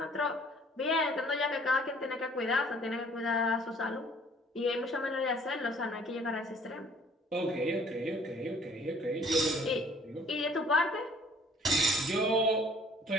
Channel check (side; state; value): both; normal; correlation 0.56